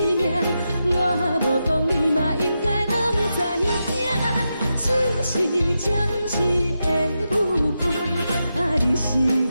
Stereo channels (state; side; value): inverted; both; correlation -0.88